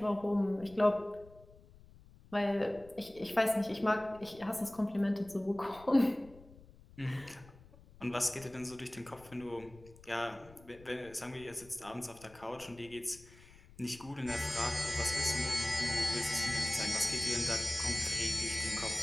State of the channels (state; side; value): noise; left; rumble, 22 dB below the sound